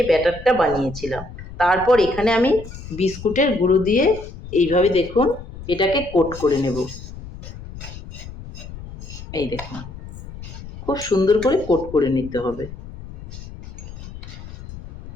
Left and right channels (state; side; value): noise; left; rumble, 13 dB below the sound